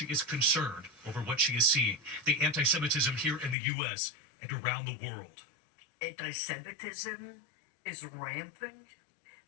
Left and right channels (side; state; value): right; drops out; at 3.6 s